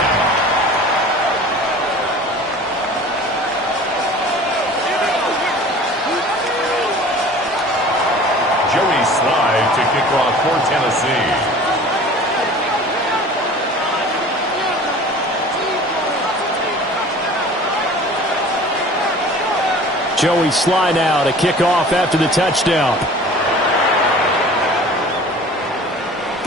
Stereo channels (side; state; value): both; normal; correlation 0.44